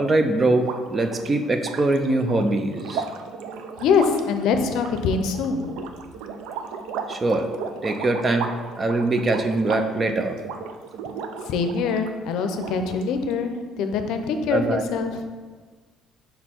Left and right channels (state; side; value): normal; both; correlation 0.66